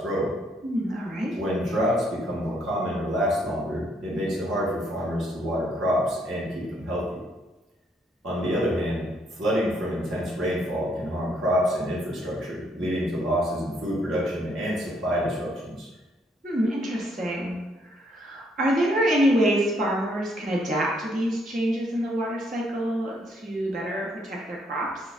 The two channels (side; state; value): both; normal; correlation 0.70